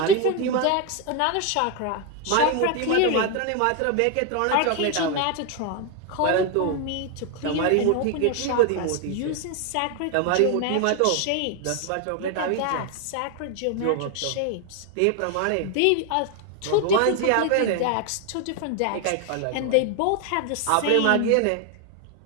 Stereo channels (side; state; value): both; different; correlation 0.01